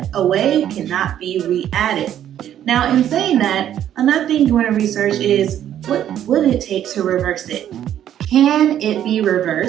away, cannot be re-added. Now, in saying that, another thing you want to research is what would it take to reverse it? Can it be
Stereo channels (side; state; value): left; quieter; 10.7 dB